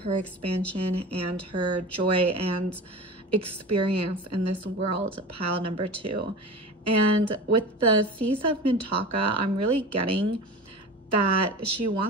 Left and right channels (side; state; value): both; normal; correlation 0.33